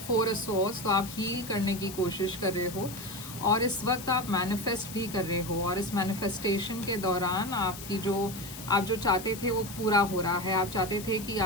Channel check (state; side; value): noise; left; hiss, 12 dB below the sound